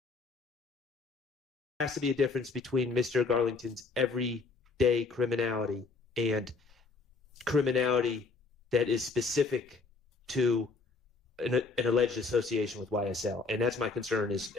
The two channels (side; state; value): right; quieter; 4.1 dB